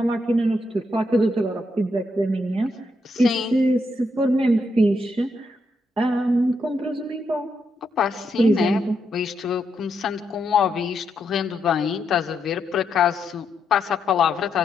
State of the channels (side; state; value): both; normal; correlation 0.80